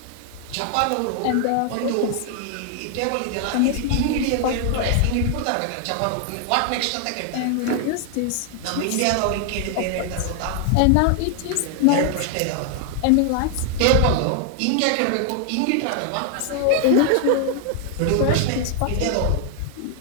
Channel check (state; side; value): different; both; correlation 0.00